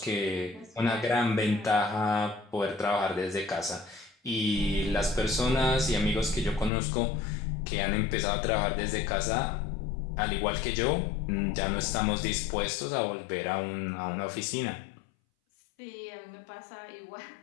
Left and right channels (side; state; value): right; drops out; at 6.7 s